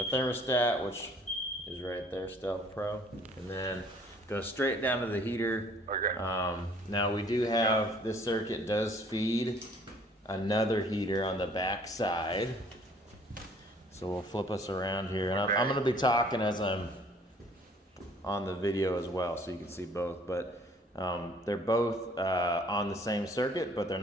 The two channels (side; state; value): both; normal; correlation 0.57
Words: thermostat, which is right there, Stealth Pro, and then goes straight down to the heater. Okay. Now we do have, this circuit does feed another heater on the back side. So we'll flip us around here, and I'm going to be talking as I'm on the video as well, so you can see both. But they're both on the same circuit, but they're